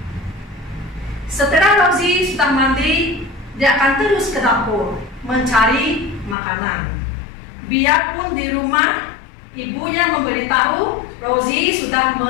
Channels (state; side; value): drops out; right; at 6.4 s